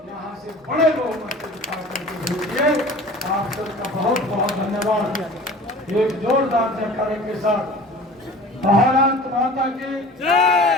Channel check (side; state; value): both; normal; correlation 0.42